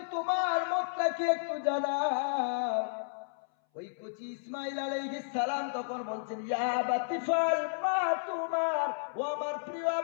তোমার মতটা কি একটু জানাও। ওই কচি ইসমাইল আলাইহিস সালাম তখন বলছেন, ইয়া বাতিফাল মা তুমার, ও আমার প্রিয়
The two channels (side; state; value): right; silent; 56 dB below the other